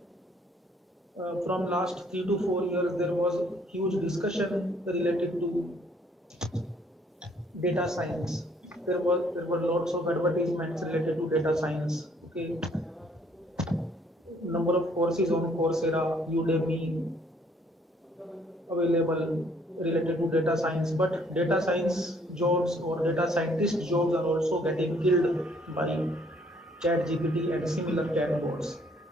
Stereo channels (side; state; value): both; normal; correlation 0.64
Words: from last 3 to 4 years there was huge discussion related to data science. There were lots of advertisements related to data science. Okay, number of courses on Coursera, Udemy available related to data science, but data science jobs or data scientist jobs are also getting killed by ChatGPT and similar chatbots.